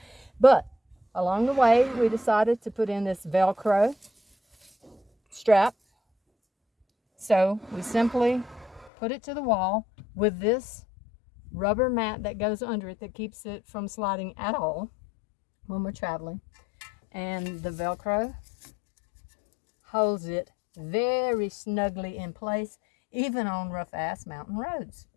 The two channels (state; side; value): drops out; right; at 8.9 s